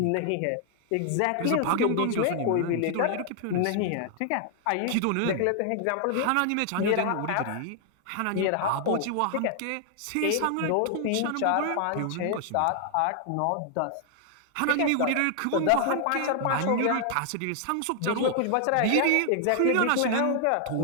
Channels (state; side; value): different; both; correlation 0.00